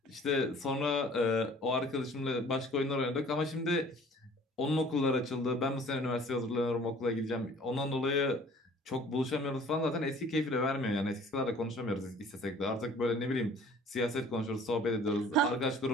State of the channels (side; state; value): both; normal; correlation 0.51